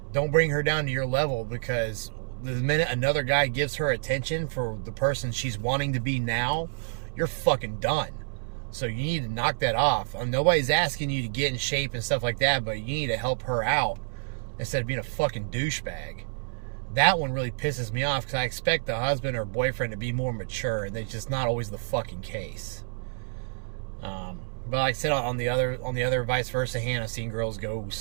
Don't bring her down to your level, because the minute another guy gives her attention for the person she's wanting to be now, you're fucking done. So you need to knock that off. Nobody's asking you to get in shape and stuff like that, but you need to help her out instead of being a fucking douchebag. That one really pisses me off because I expect the husband or boyfriend to be more mature, and that's just not always the fucking case. But like I said, on the other vice versa hand, I've seen girls go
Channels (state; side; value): silent; left; digital silence